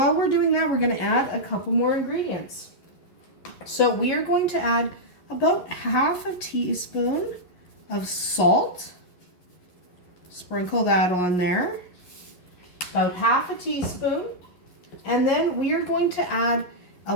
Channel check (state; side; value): late; right; 11 ms